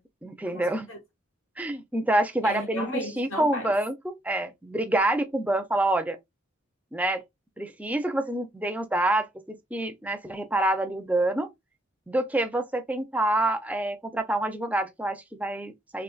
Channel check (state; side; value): normal; both; correlation 0.73